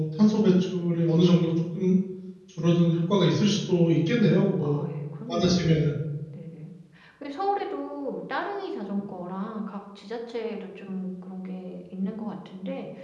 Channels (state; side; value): identical; both; correlation 1.00